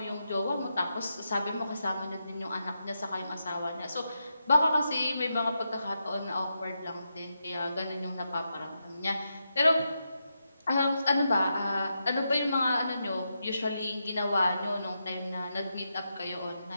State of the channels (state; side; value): inverted; both; correlation -0.86